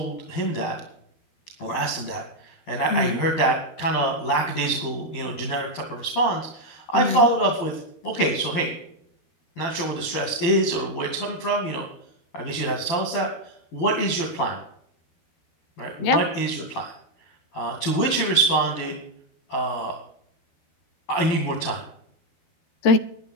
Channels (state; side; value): late; right; 12 ms